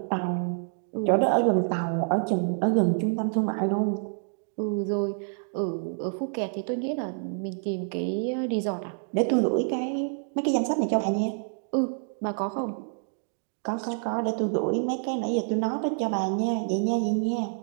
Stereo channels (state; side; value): silent; left; 60 dB below the other